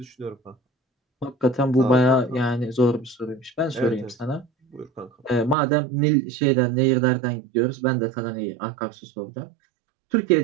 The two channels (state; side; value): drops out; left; at 5.6 s